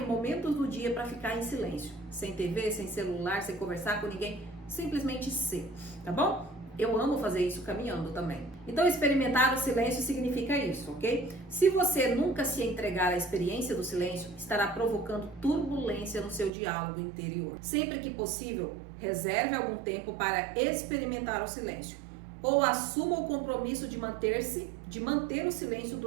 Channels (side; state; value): left; drops out; at 16.5 s